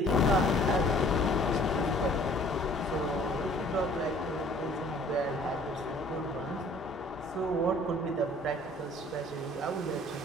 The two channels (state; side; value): normal; both; correlation 0.54